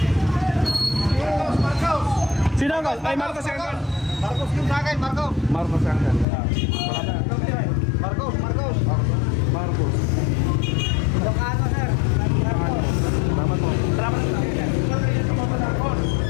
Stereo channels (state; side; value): drops out; right; at 6.2 s